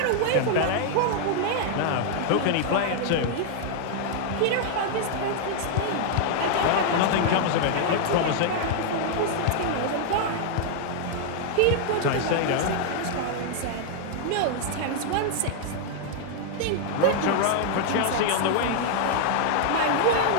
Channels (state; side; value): different; both; correlation 0.00